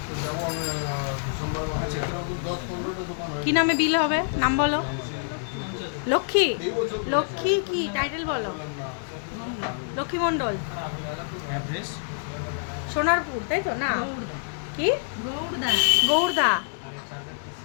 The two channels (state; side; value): silent; right; digital silence